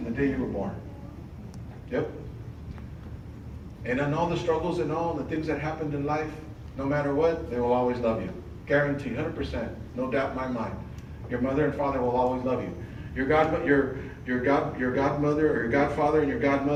the day you were born. Yep. And on all the struggles and all the things that happened in life, no matter what, they will always love you. Guarantee, 100%, no doubt in my mind. Your mother and father will always love you. Your godmother or your godfather and your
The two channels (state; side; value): identical; both; correlation 1.00